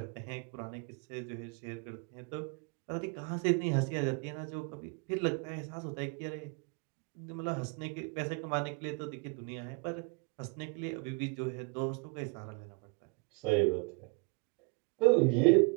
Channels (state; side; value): quieter; left; 31.9 dB